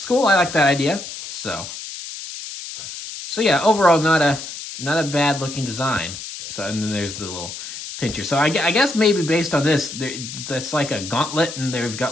cool. I like that idea. So yeah, overall not a bad looking design. So, and then there's the little pincher. So I guess maybe based on this, that's like a gauntlet, and they've got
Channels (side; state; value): left; noise; hiss, 10 dB below the sound